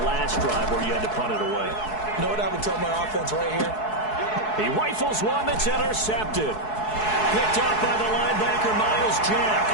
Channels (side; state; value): right; late; 4.7 ms